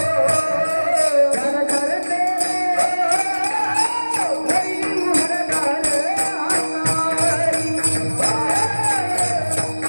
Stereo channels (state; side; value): inverted; both; correlation -1.00